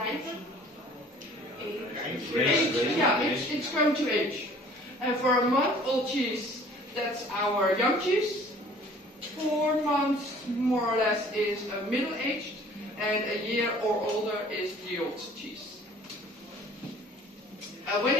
age? Yeah, it's going to age. And for a month-old cheese, that's our young cheese. 4 months, more or less, is a middle-aged, and a year or older is the old cheese. When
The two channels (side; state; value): both; normal; correlation 0.51